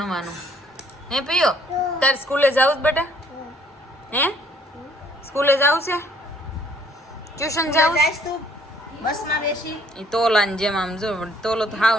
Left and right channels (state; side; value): normal; both; correlation 0.62